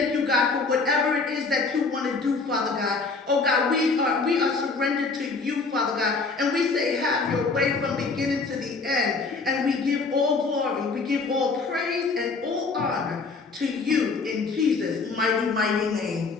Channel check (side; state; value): right; quieter; 4.2 dB